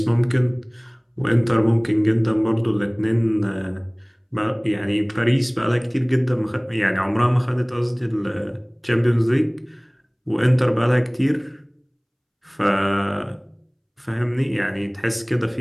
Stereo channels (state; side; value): identical; both; correlation 1.00